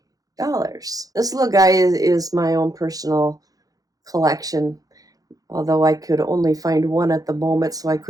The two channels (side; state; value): left; late; 0.17 ms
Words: This little guy is my own personal collection, although I could only find one at the moment, so I